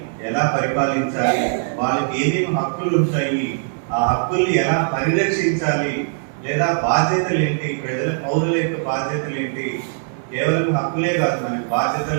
ఎలా పరిపాలించాలి, వాళ్ళకి ఏమేమి హక్కులు ఉంటాయి, ఆ హక్కుల్ని ఎలా పరిరక్షించాలి, లేదా బాధ్యతలు ఏంటి, ప్రజల పౌరుల యొక్క బాధ్యతలు ఏంటి. కేవలం హక్కులే కాదు, మనకి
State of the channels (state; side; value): silent; left; digital silence